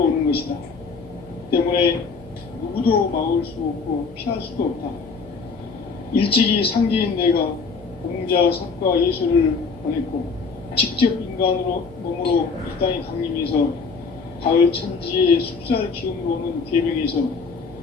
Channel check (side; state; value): right; quieter; 4.8 dB